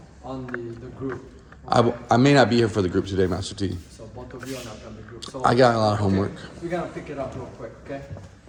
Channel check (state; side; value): identical; both; correlation 1.00